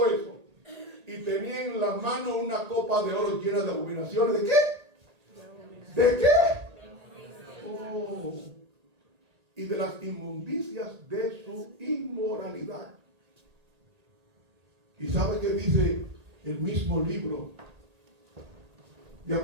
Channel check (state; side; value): late; left; 1.8 ms